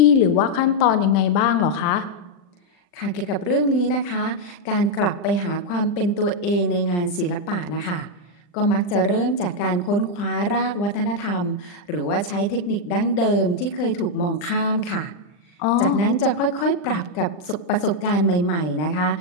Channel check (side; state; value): right; late; 40 ms